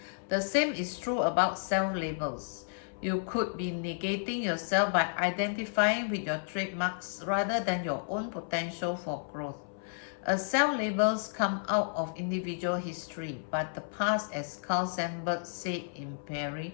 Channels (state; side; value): silent; right; 56 dB below the other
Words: The same is true about self-labels. You could be negating yourself by identifying with your trademarks rather than your own potential for growth. Self-labels come out of individual history, but the past, as Carl Sandburg said in